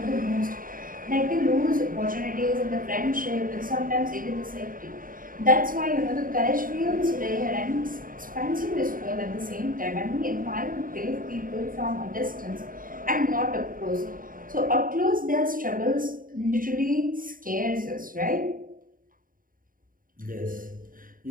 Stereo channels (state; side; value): late; left; 0.40 ms